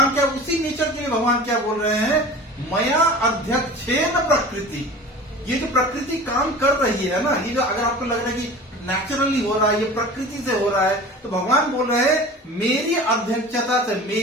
क्या, उसी नेचर के लिए भगवान क्या बोल रहे हैं, मया अध्यक्षेन प्रकृति। ये जो प्रकृति काम कर रही है ना, ये जो अगर आपको लग रहा है कि नेचुरली हो रहा है, ये प्रकृति से हो रहा है, तो भगवान बोल रहे हैं मेरी अध्यक्षता से,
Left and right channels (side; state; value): both; normal; correlation 0.38